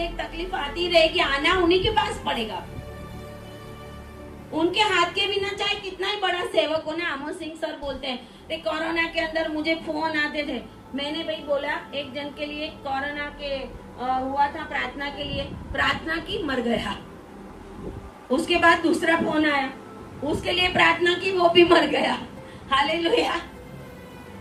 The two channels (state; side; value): identical; both; correlation 1.00